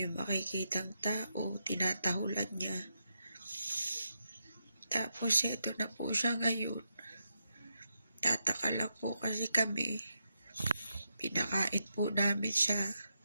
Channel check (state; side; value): inverted; both; correlation -0.84